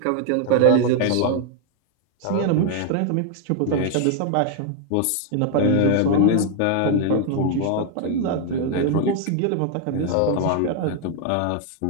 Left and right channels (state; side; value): different; both; correlation 0.00